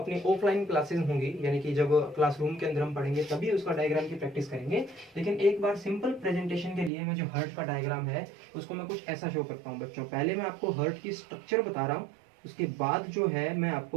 ऑफलाइन क्लासेस होंगी यानी कि जब क्लासरूम के अंदर हम पढ़ेंगे तभी उसका डायग्राम की प्रैक्टिस करेंगे। लेकिन एक बार सिंपल प्रेजेंटेशन के लिए मैं जो हार्ट का डायग्राम है उसको मैं कुछ ऐसा शो करता हूँ बच्चों। पहले मैं आपको हार्ट की स्ट्रक्चर बता रहा हूँ, उसके बाद जो है मैं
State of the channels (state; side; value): drops out; left; at 6.9 s